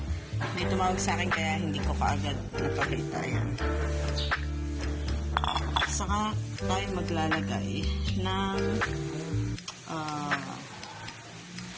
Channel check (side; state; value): both; identical; correlation 1.00